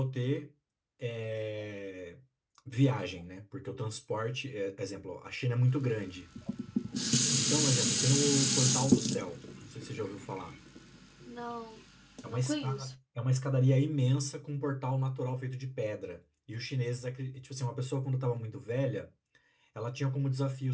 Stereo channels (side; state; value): both; identical; correlation 1.00